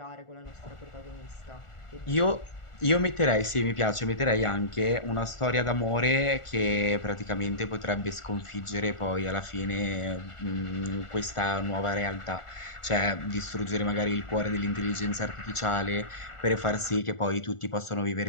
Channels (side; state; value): right; late; 1.4 ms